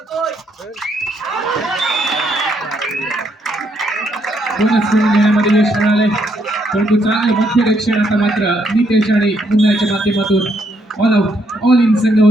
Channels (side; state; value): both; normal; correlation 0.74